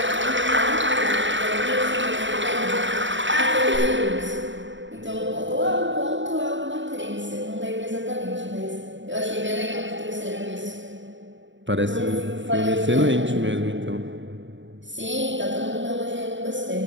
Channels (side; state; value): left; late; 0.55 ms